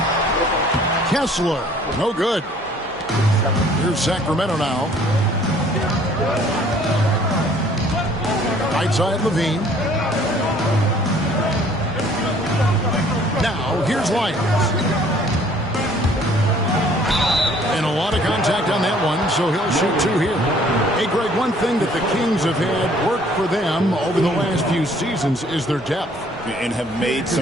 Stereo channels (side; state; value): both; normal; correlation 0.57